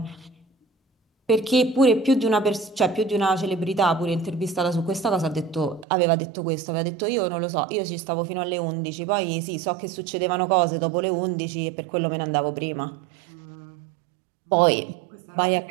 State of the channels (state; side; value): drops out; left; at 5.9 s